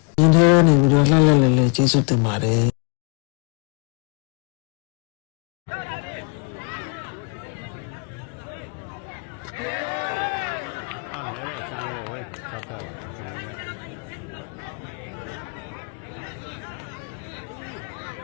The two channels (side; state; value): right; quieter; 39.0 dB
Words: ဒီထဲနေပြီးတော့လှလှလဲလဲကျေးဇူးတင်ပါတယ်နေတဲ့ဆန်းကိုဝယ်ဆောက်ပြပါကျွန်တော်က